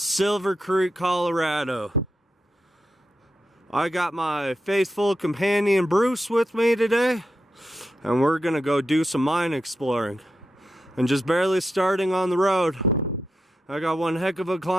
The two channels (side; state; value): both; normal; correlation 0.87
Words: Creek, Colorado. I got my faithful companion, Bruce, with me today, and we're gonna go do some mine exploring. And just barely starting on the road. I got one heck of a